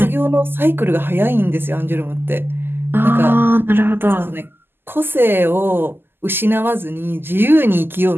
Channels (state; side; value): late; left; 0.10 ms